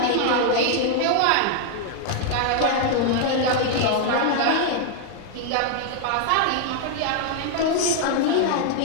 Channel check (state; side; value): different; both; correlation 0.00